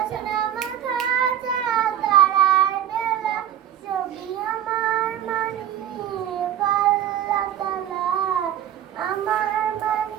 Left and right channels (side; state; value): left; quieter; 10.5 dB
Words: মাখা চাঁদ তারার বেলা। ছবি আমার মানিক আল্লাহ তাআলা, আমার